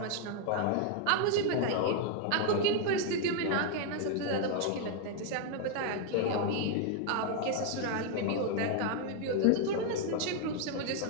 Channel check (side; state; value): both; different; correlation 0.00